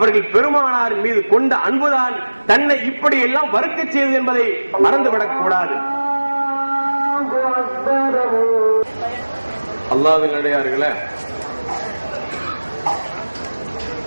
பெருமானார் மீது கொண்ட அன்புதான் தன்னை இப்படி எல்லாம் வறுக்க செய்தது என்பதை மறந்துவிடக் கூடாது. அல்லாஹ்வின் அடியார்களே,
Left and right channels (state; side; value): inverted; both; correlation -1.00